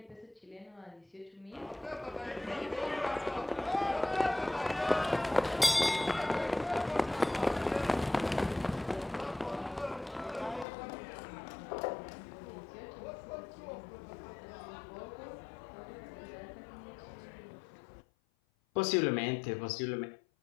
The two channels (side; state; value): right; drops out; at 10.7 s